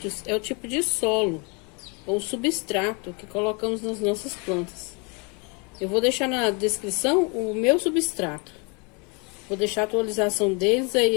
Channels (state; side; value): quieter; right; 32.1 dB